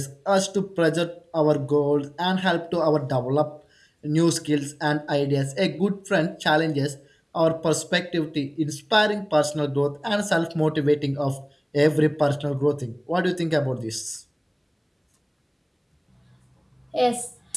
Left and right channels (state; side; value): identical; both; correlation 1.00